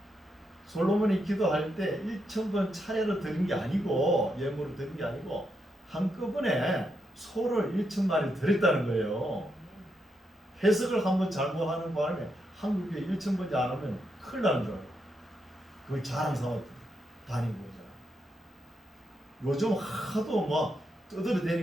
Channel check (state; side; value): normal; both; correlation 0.82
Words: 솔로몬이 기도할 때 1,000번 차례로 드린 게 아니고 예물을 드린 게 아니고 한꺼번에 소를 1,000마리 드렸다는 거예요. 해석을 한번 잘못하는 바람에 한국에 1,000번째 안 하면 큰일 나는 줄 알아요. 그걸 자랑 삼아 다니고 있잖아. 요즘 하도 막